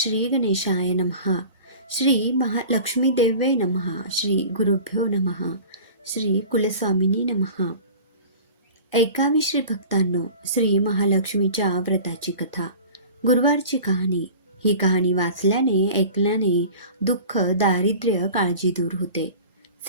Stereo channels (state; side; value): inverted; both; correlation -0.40